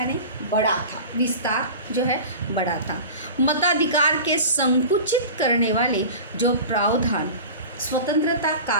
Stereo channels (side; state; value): both; inverted; correlation -0.35